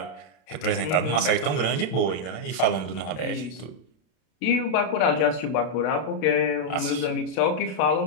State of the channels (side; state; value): right; late; 32 ms